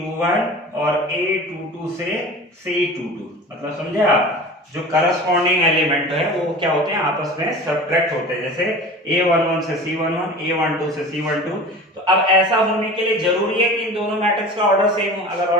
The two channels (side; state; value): both; normal; correlation 0.37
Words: और A22 से C22। मतलब समझे आप, जो करस्पॉन्डिंग एलिमेंट है वो क्या होते हैं, आपस में सब्ट्रैक्ट होते हैं। जैसे A11 से C11, A12 से C12। तो अब ऐसा होने के लिए जरूरी है कि इन दोनों मैट्रिक्स का ऑर्डर सेम हो। अगर